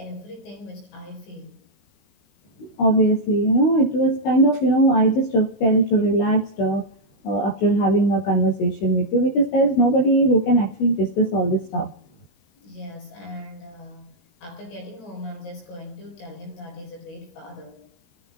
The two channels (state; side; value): late; right; 18 ms